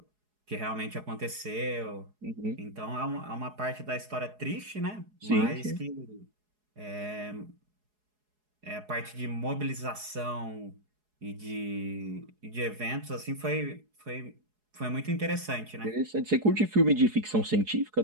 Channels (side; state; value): left; late; 4.8 ms